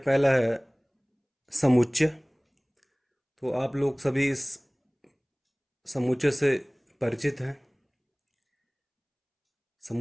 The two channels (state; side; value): identical; both; correlation 1.00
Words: है समुच्चय। तो आप लोग सभी इस समुच्चय से परिचित हैं।